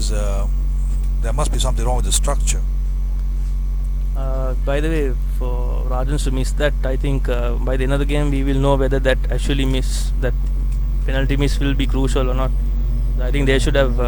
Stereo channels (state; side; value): identical; both; correlation 1.00